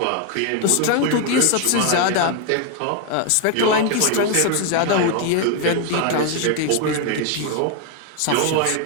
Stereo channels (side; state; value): both; different; correlation 0.01